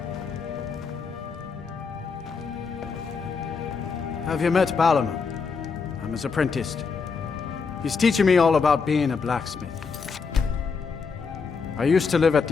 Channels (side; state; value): right; quieter; 5.2 dB